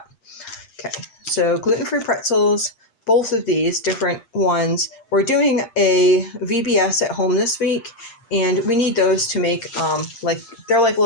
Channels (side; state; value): right; late; 8.6 ms